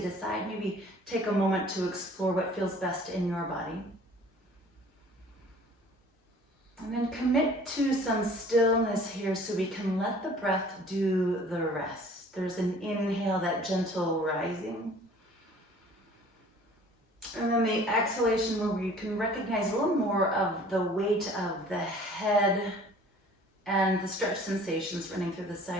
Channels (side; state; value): both; normal; correlation 0.50